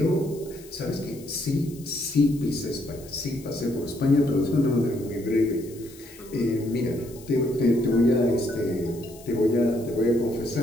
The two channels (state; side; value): noise; left; hiss, 21 dB below the sound